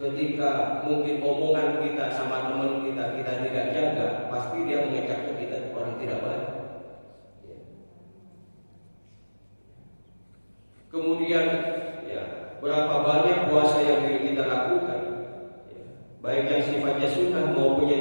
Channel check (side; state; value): both; inverted; correlation -1.00